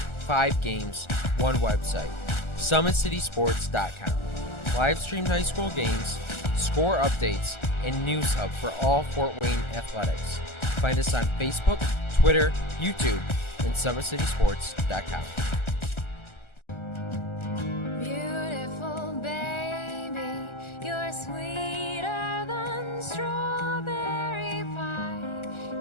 5 games, 1 website. SummitCitySports.com. Live streamed high school games, score updates, and news hub for all Fort Wayne athletics. Find us on Facebook, Twitter, YouTube, and SummitCitySports.com. Beautiful baby, you're sweeter than strawberry pie.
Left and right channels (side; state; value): right; late; 1.4 ms